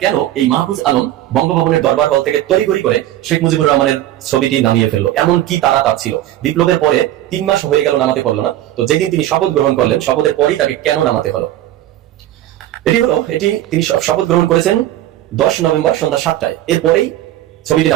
কেন এই মাহফুজ আলম বঙ্গভবনের দরবার হল থেকে তড়িঘড়ি করে শেখ মুজিবুর রহমানের ছবিটি নামিয়ে ফেললো? এমন কি তারা তার ছিল? বিপ্লবের পরে 3 মাস হয়ে গেল, নামাতে পারলো না। তো যেদিন তিনি শপথ গ্রহণ করলেন, শপথের পরই তাকে কেন নামাতে হলো? এটি তিনি শপথ গ্রহণ করেছেন 10 নভেম্বর সন্ধ্যা 7টায়। এরপরেই ছবিটি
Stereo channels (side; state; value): left; quieter; 13.7 dB